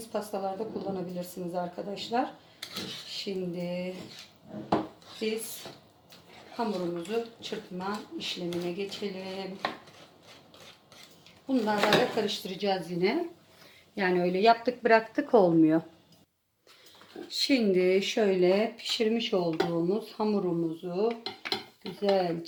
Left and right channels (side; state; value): both; identical; correlation 1.00